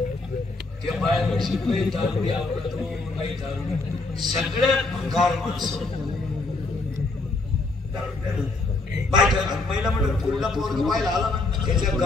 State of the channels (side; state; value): right; quieter; 3.3 dB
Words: त्या बाहेर शिकले दारुडी आवडतो नाही दारुडी सगळ्यात भंगार माणसं महिला म्हणून पुढला पोरग पाहिला आला ना त्याच्या